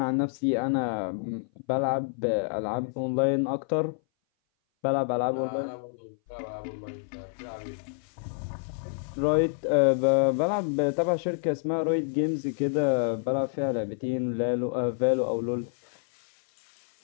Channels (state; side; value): silent; right; 58 dB below the other